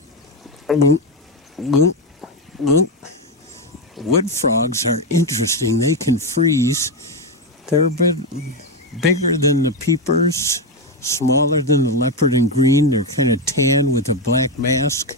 wood frogs are interesting. They can freeze. They're a bit bigger than the peepers, smaller than the leopard and green. They're kind of tan with a black mask,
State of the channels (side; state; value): both; normal; correlation 0.09